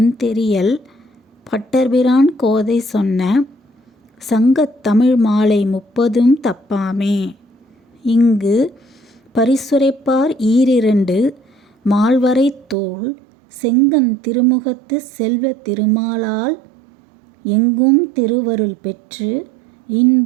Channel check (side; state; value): left; drops out; at 12.8 s